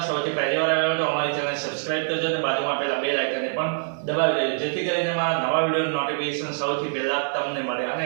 સૌથી પહેલી વાર આવ્યા હોય તો અમારી ચેનલને સબસ્ક્રાઇબ કરજો અને બાજુમાં આપેલા બેલ આઇકનને પણ દબાવી દેજો જેથી કરીને અમારા નવા વિડીયોનું નોટિફિકેશન સૌથી પહેલા તમને મળે। અને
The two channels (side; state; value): left; silent; digital silence